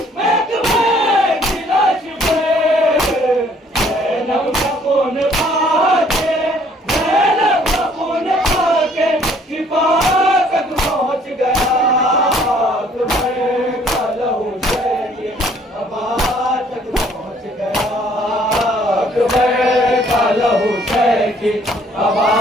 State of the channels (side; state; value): both; normal; correlation 0.61